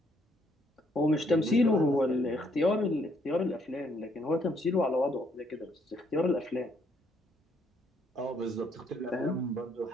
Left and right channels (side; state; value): both; normal; correlation 0.70